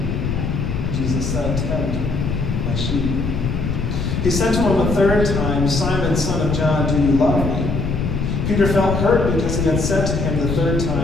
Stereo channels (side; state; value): left; noise; rumble, 2 dB below the sound